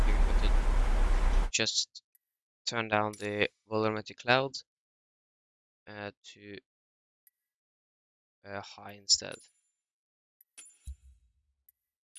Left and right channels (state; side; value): identical; both; correlation 1.00